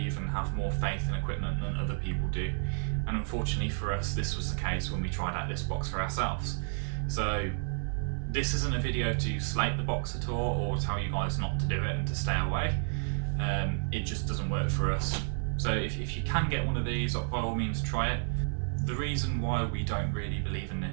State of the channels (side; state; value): left; silent; 55 dB below the other